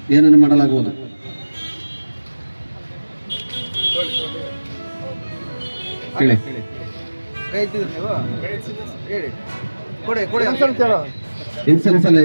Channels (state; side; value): inverted; both; correlation -1.00